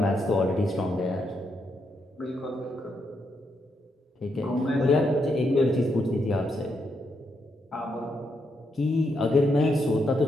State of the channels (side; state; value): both; normal; correlation 0.80